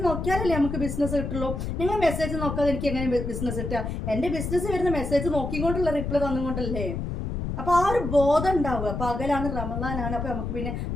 നോക്കിയാലല്ലേ നമുക്ക് ബിസിനസ് കിട്ടുള്ളൂ. നിങ്ങൾ മെസ്സേജ് നോക്കാതെ എനിക്ക് എങ്ങനെ ബിസിനസ് കിട്ടുക? എൻ്റെ ബിസിനസ് വരുന്ന മെസ്സേജ് നോക്കിക്കൊണ്ടുള്ള റിപ്ലൈ തന്നുകൊണ്ടല്ലേ. അപ്പോൾ ആ ഒരു ബോധം ഉണ്ടാവുക. പകലാണ്, റമദാനാണ്, അപ്പോൾ നമുക്ക് പിന്നെ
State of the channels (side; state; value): left; noise; rumble, 4 dB below the sound